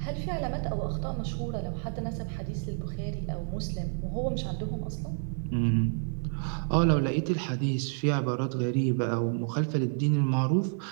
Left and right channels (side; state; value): left; silent; digital silence